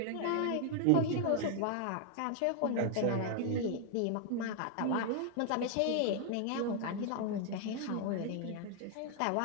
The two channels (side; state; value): both; different; correlation 0.00